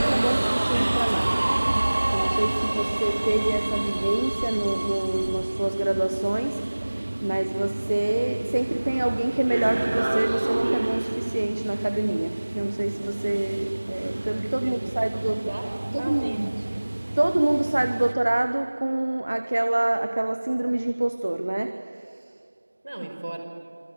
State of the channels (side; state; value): both; inverted; correlation -1.00